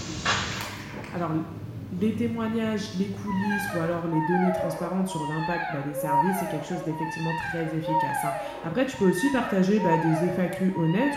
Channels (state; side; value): identical; both; correlation 1.00